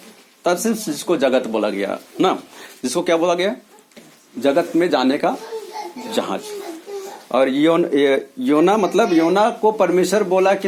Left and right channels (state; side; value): identical; both; correlation 1.00